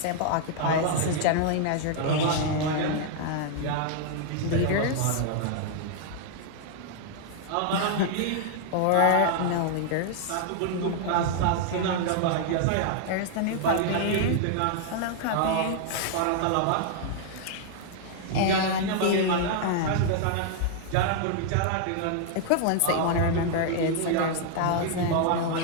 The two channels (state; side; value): different; both; correlation 0.00